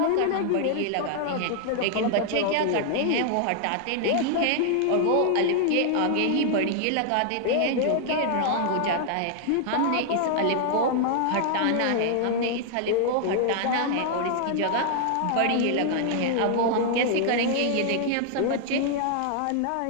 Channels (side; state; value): both; different; correlation 0.00